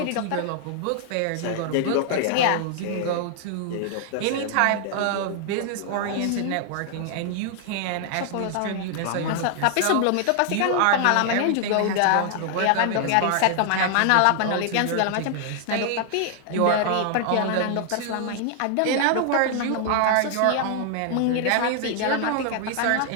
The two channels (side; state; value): both; different; correlation 0.00